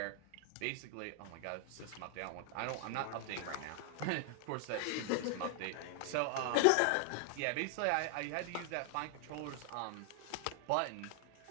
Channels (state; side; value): different; both; correlation 0.00